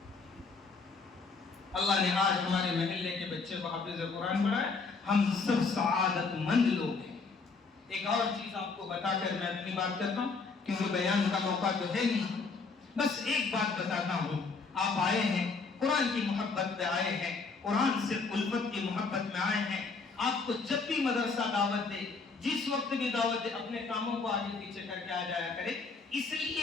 اللہ نے آج ہمارے محلے کے بچے کو حافظ قرآن بنایا، ہم سب سعادت مند لوگ ہیں. ایک اور چیز آپ کو بتا کر میں اپنی بات کرتا ہوں، کیونکہ بیان کا موقع تو ہے نہیں. بس ایک بات بتاتا ہوں، آپ آئے ہیں قرآن کی محبت میں آئے ہیں، قرآن سے الفت کی محبت میں آئے ہیں. آپ کو جب بھی مدرسہ دعوت دے، جس وقت بھی دعوت دے، اپنے کاموں کو آگے پیچھے کر کے آ جایا کرے، اس لیے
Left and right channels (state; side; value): quieter; right; 4.4 dB